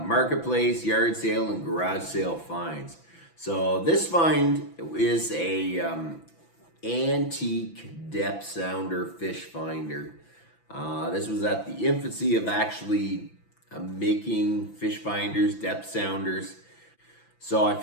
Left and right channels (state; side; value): late; right; 6.0 ms